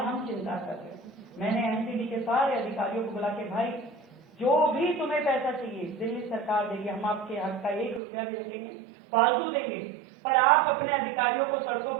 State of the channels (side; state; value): left; drops out; at 8.0 s